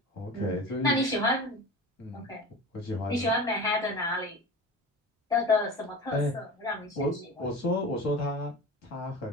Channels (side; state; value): both; normal; correlation 0.33